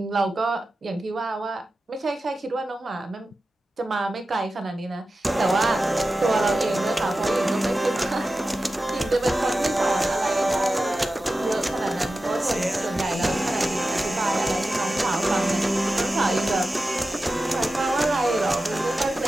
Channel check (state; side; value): normal; both; correlation 0.93